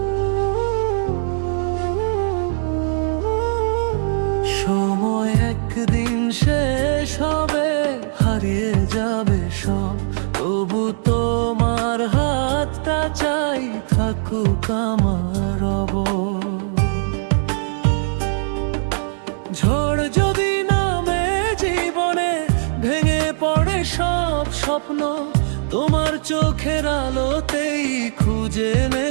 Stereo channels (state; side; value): silent; left; digital silence